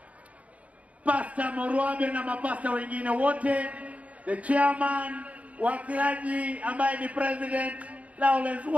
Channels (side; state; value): left; late; 0.067 ms